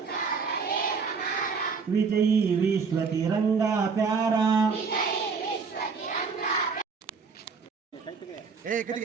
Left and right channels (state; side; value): quieter; left; 5.2 dB